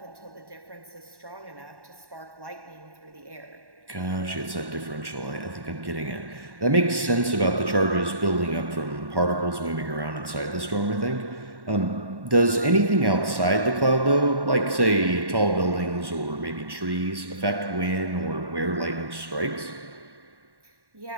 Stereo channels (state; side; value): late; left; 1.1 ms